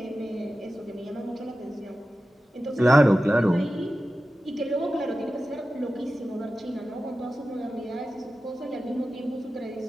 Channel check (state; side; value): normal; both; correlation 0.94